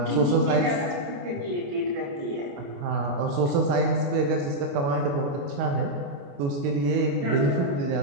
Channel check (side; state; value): left; late; 29 ms